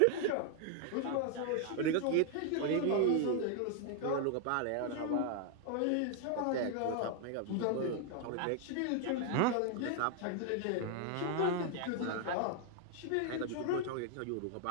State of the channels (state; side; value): different; both; correlation 0.00